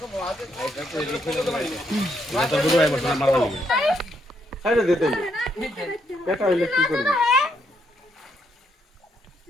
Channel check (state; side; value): normal; both; correlation 0.75